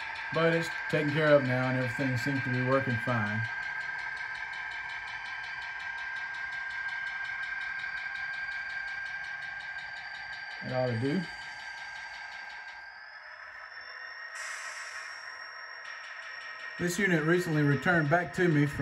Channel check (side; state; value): both; identical; correlation 1.00